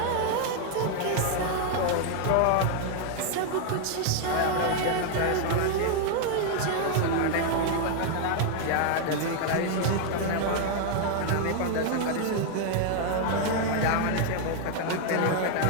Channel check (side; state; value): both; different; correlation 0.00